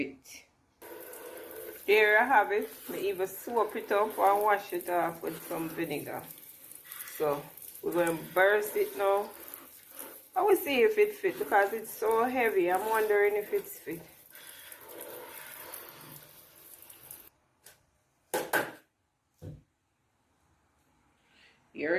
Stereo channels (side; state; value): both; identical; correlation 1.00